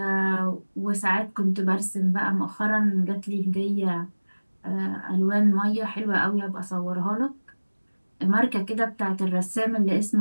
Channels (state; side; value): inverted; both; correlation -1.00